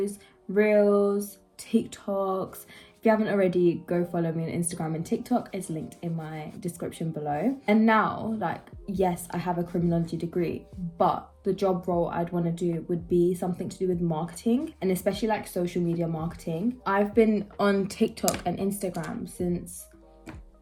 reels, TikToks. If you haven't already, go follow me on Instagram and TikTok. It's linked in my description below. And now, yes, I have a criminology degree, but the job role I'd want to do would be something to do with marketing, and especially like social media marketing. I've been on TikTok and Instagram since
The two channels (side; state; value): both; identical; correlation 1.00